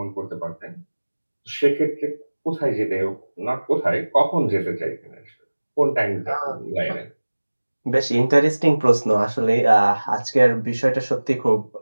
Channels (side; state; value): both; inverted; correlation -1.00